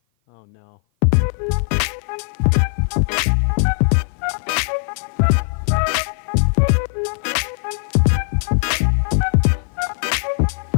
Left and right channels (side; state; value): right; silent; 56 dB below the other